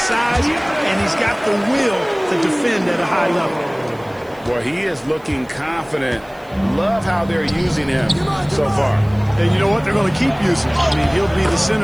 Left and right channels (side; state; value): right; noise; hiss, 29 dB below the sound